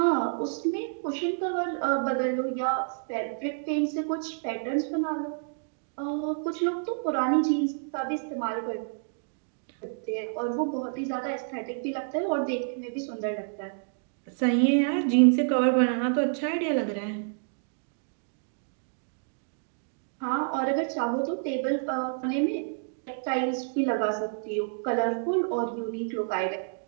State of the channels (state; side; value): silent; left; digital silence